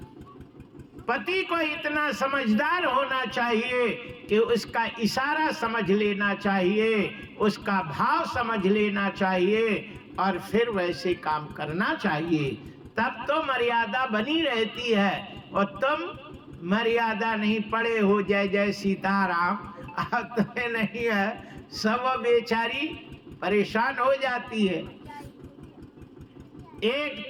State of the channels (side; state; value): both; identical; correlation 1.00